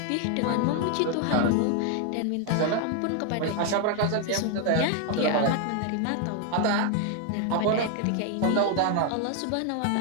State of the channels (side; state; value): both; different; correlation 0.00